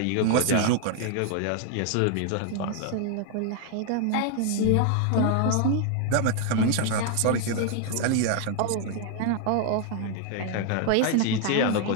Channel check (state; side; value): different; both; correlation 0.00